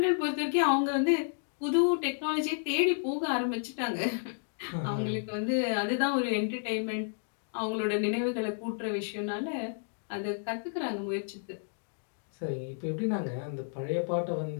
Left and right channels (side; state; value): right; silent; digital silence